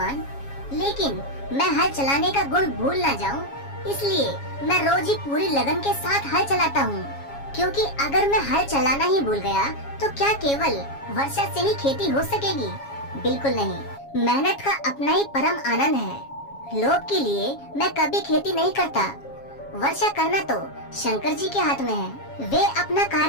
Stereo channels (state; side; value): late; right; 7.3 ms